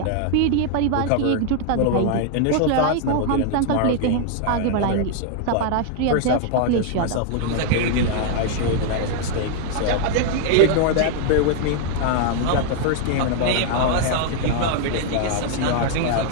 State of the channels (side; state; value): both; different; correlation 0.00